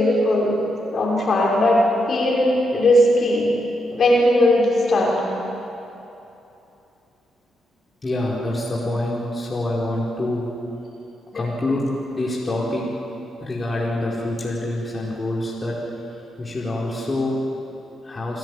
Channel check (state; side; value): normal; both; correlation 0.82